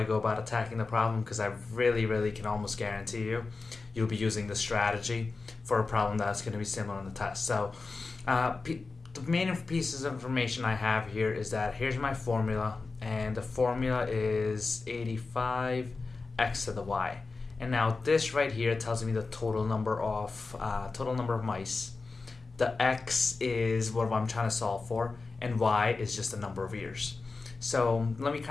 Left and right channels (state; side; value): quieter; right; 4.0 dB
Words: go about attacking the problem, because I really can almost guarantee you'll be using the strategy for a problem that's going to be similar on the test. So the main pieces of information I have here is that here's my formula, and the formula is 85 x to the y. And now this right here tells me the total number of mice. The x is what I'm trying to solve for, and y is just the number of years. So let me